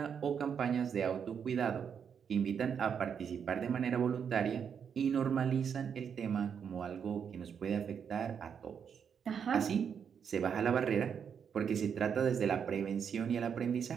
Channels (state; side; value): quieter; left; 7.3 dB